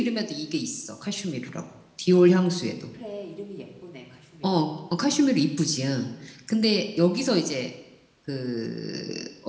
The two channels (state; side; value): identical; both; correlation 1.00